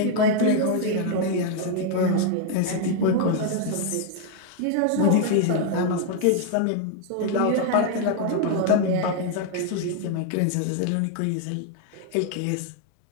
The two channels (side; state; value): both; different; correlation 0.00